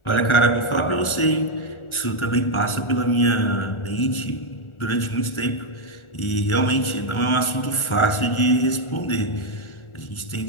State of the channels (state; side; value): late; right; 1.4 ms